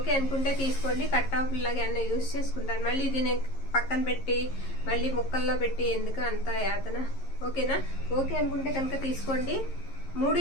అనుకుంటే తీసుకోండి. కట్ టాపుల్లాగా ఏమన్నా యూజ్ చేసుకుంటాను. మళ్ళీ ఇది నేను పక్కన పెట్టి మళ్ళీ ముక్కల్లో పెట్టి ఎందుకు అంత యాతన. ఓకేనా? ఓకే అనుకుంటే కనుక తీసుకోండి.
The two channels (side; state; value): right; late; 11 ms